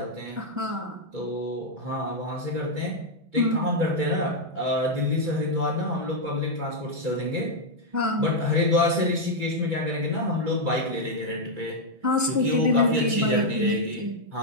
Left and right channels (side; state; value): left; late; 6.1 ms